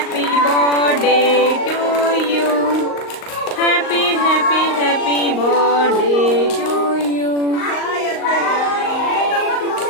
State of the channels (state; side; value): late; right; 38 ms